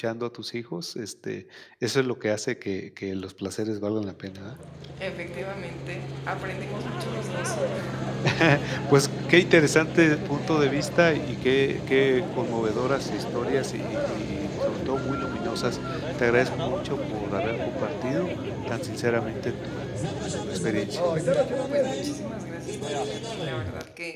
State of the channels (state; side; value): identical; both; correlation 1.00